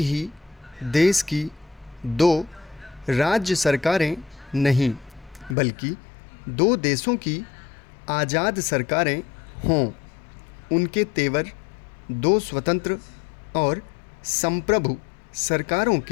ही देश की दो राज्य सरकारें नहीं बल्कि दो देशों की आज़ाद सरकारें हों। उनके तेवर दो स्वतंत्र और संप्रभु सरकारों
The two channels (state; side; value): drops out; right; at 5.6 s